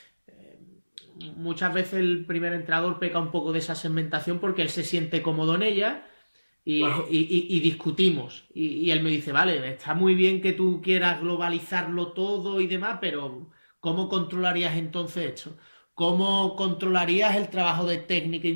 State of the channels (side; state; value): both; inverted; correlation -1.00